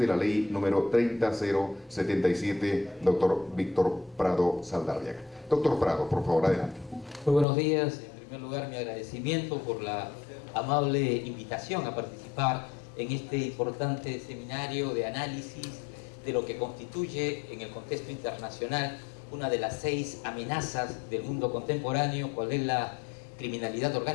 la ley número 30077, doctor Víctor Prado Saldarriaga. Doctor Prado, por favor, adelante. Muy buenos días. En primer lugar, mi agradecimiento por la amable invitación a participar en este importante seminario de análisis de lo que constituye en el contexto internacional una de las 6 amenazas del mundo contemporáneo, cual es la criminalidad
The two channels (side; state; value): right; drops out; at 7.5 s